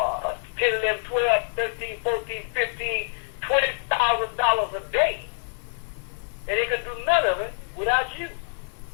11, 12, 13, 14, 15, $20,000 a day. And they can do none of it without you.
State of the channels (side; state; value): right; silent; digital silence